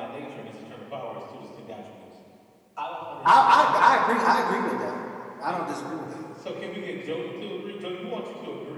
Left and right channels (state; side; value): identical; both; correlation 1.00